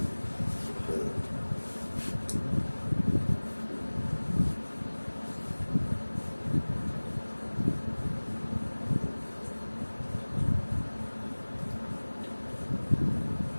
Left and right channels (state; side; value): inverted; both; correlation -1.00